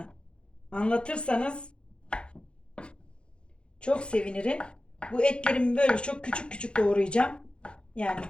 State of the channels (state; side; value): late; right; 0.056 ms